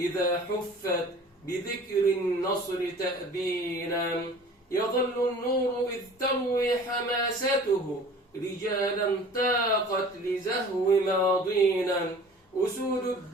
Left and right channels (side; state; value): both; normal; correlation 0.45